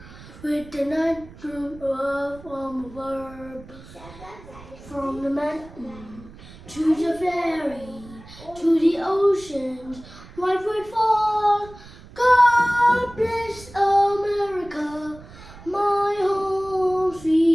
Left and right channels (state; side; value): noise; right; rumble, 19 dB below the sound